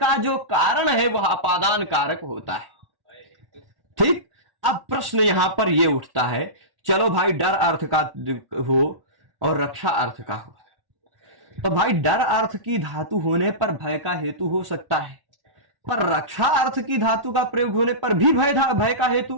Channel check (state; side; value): late; left; 1.1 ms